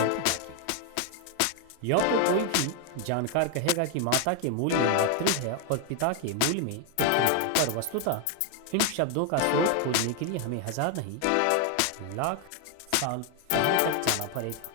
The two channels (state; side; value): different; both; correlation 0.01